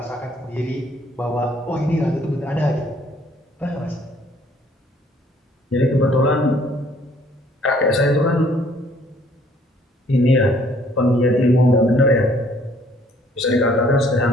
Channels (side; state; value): both; normal; correlation 0.61